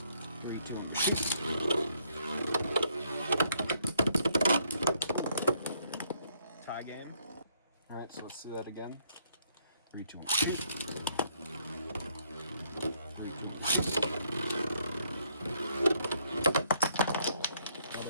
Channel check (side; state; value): both; inverted; correlation -0.70